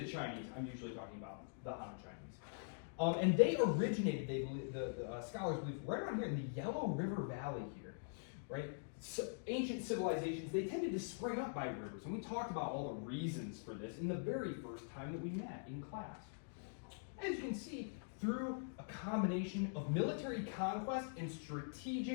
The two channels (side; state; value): right; silent; digital silence